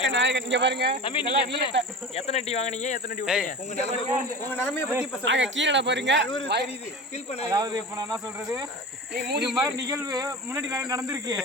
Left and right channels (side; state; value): both; normal; correlation 0.32